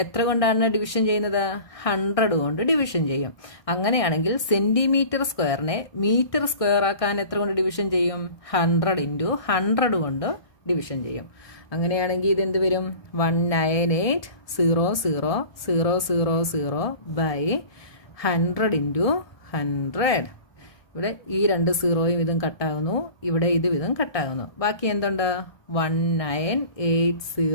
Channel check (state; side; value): late; right; 1.2 ms